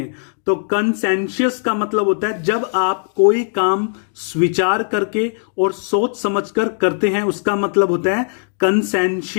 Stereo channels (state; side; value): silent; right; 67 dB below the other